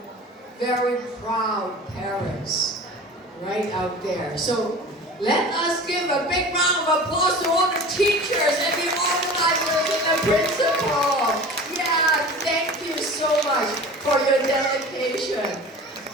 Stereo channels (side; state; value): both; normal; correlation 0.38